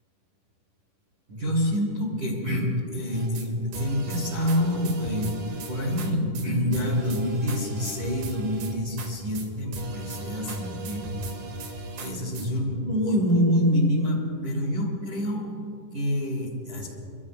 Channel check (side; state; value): left; late; 10 ms